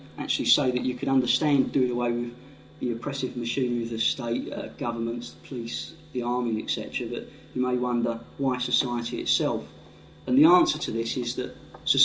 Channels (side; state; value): both; identical; correlation 1.00